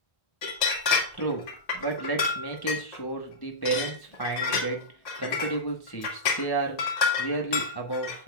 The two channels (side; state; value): right; late; 1.6 ms